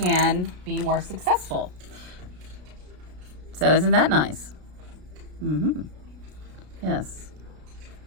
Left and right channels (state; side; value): late; left; 33 ms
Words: be more successful. So isn't that nice? Yes.